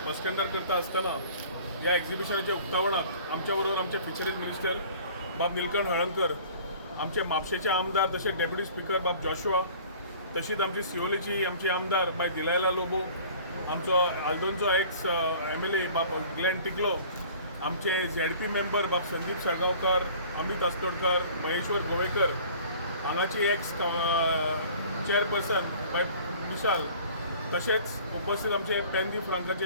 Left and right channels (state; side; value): inverted; both; correlation -0.48